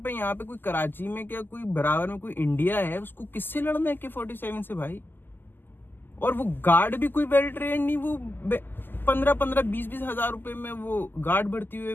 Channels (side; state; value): right; late; 0.093 ms